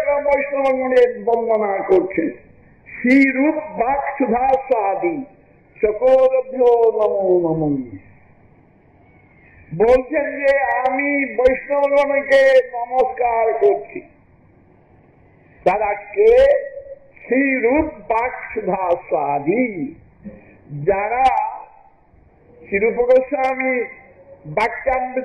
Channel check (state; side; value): identical; both; correlation 1.00